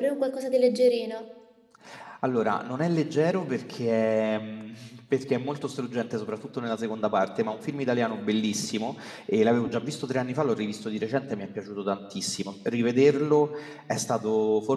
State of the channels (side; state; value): both; identical; correlation 1.00